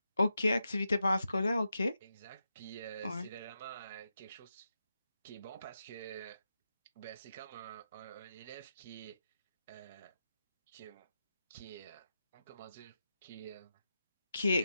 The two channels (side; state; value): both; inverted; correlation -0.87